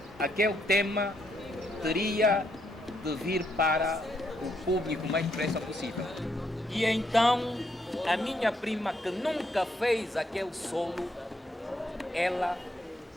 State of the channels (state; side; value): normal; both; correlation 0.75